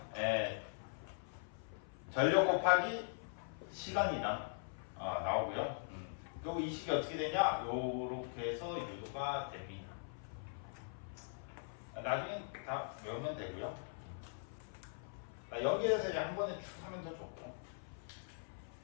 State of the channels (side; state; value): right; silent; 50 dB below the other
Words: 전력 곱하기 시간이당 나오고요. 그리고 이 식이 어떻게 되냐? 요렇게 해서 유도가 됩니다. 나중에 다 외우면 되고요. 여기에서 이제 한 번에 쭉 하면 더 좋고.